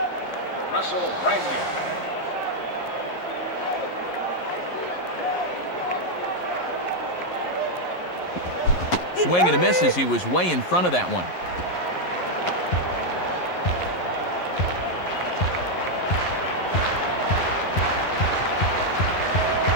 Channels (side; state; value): right; late; 11 ms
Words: Russell Branyan. Swing and a miss as he was way in front of that one.